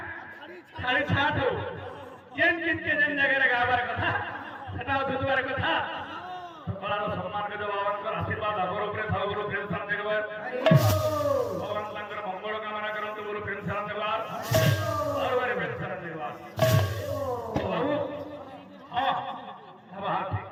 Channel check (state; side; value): identical; both; correlation 1.00